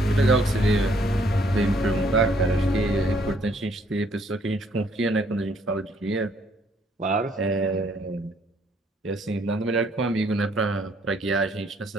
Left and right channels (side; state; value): both; normal; correlation 0.66